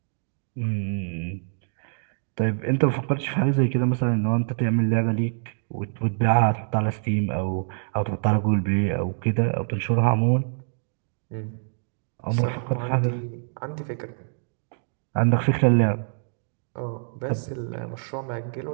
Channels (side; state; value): left; silent; digital silence